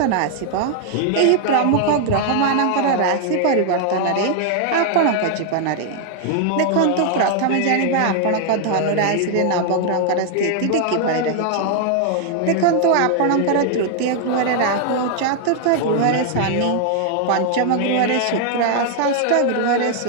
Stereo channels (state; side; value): different; both; correlation 0.00